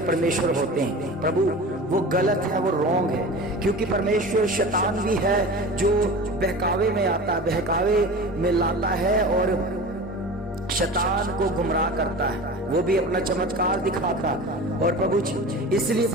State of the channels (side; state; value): both; normal; correlation 0.34